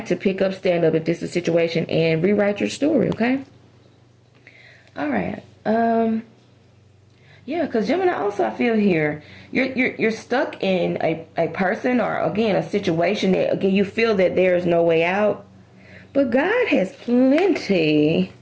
to pick up, stand up if this is a situation, and rewrite your story, okay? All right. Yeah, because Gemini also, I feel here, you're stuck in a person or, again, a situation that, again, you feel that there is no way out. But God has plenty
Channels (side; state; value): both; identical; correlation 1.00